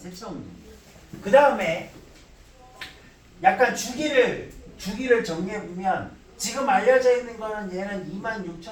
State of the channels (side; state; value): both; identical; correlation 1.00